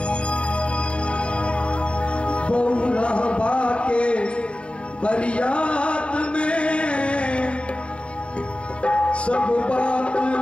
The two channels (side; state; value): right; late; 0.058 ms